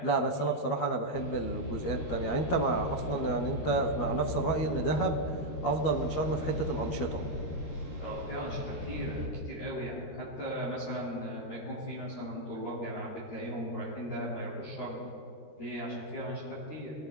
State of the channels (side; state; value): right; late; 12 ms